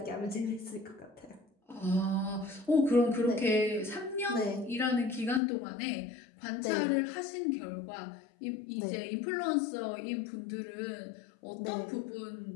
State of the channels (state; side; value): drops out; right; at 5.4 s